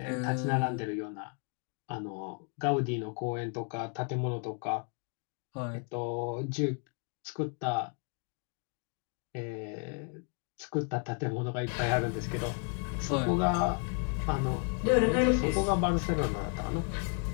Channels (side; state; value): right; quieter; 39.8 dB